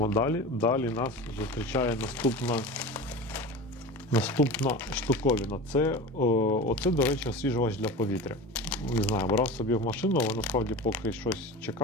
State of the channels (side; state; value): both; normal; correlation 0.31